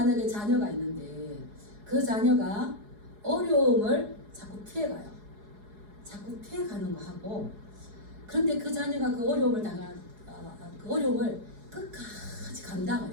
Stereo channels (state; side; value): late; left; 4.8 ms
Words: 자녀가 있는데 그 자녀가 어려움을 자꾸 피해가요. 자꾸 피해가는 거 하고, 그런데 그 자녀가 그 어려움을 그 어려움을 끝까지 감당을